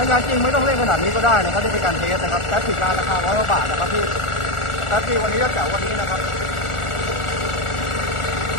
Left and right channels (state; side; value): late; right; 1.4 ms